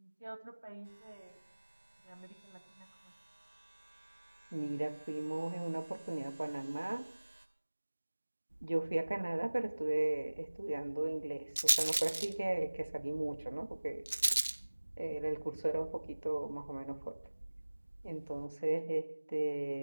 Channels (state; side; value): inverted; both; correlation -1.00